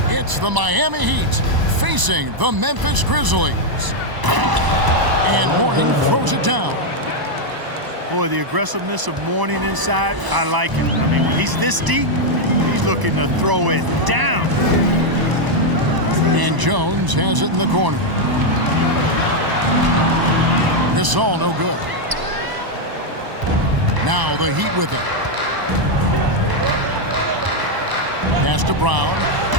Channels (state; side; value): late; left; 1.0 ms